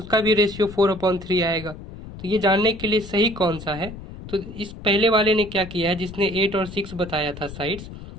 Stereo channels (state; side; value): noise; left; rumble, 13 dB below the sound